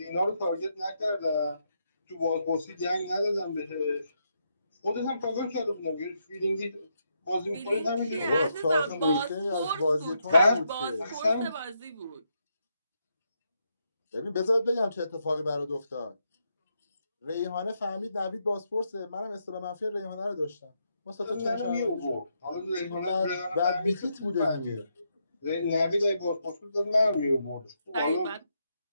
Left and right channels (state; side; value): inverted; both; correlation -0.80